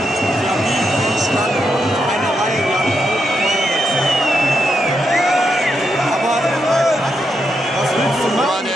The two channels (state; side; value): normal; both; correlation 0.82